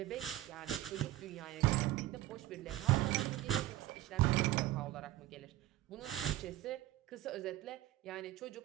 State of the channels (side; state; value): left; quieter; 15.2 dB